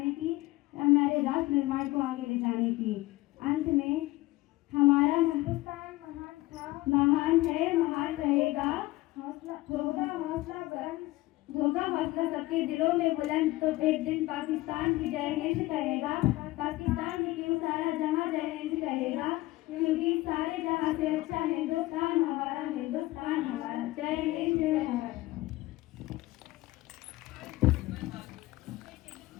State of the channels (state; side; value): quieter; right; 18.7 dB